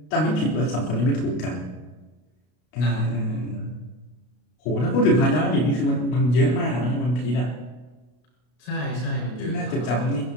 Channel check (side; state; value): right; late; 32 ms